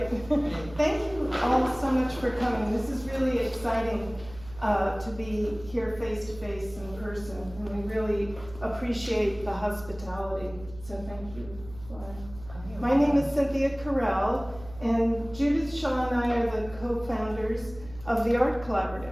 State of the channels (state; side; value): noise; right; hum, 17 dB below the sound